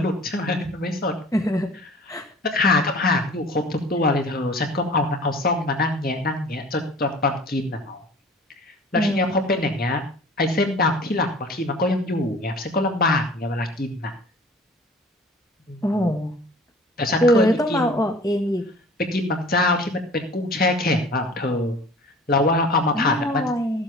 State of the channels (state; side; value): normal; both; correlation 0.45